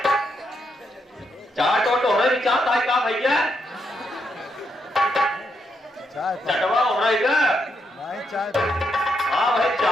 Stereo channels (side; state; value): both; normal; correlation 0.80